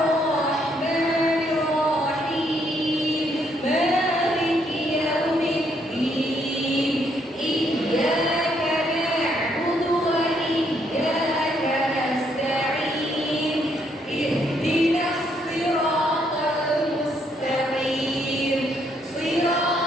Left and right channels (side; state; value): both; normal; correlation 0.72